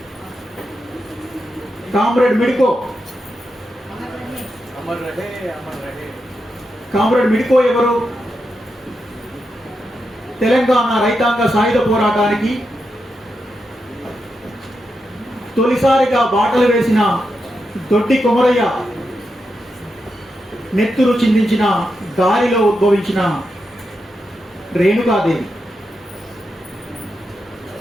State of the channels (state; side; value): normal; both; correlation 0.86